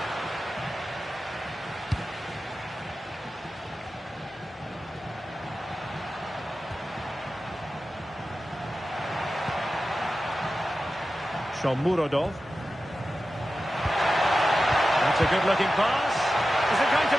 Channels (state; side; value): normal; both; correlation 0.93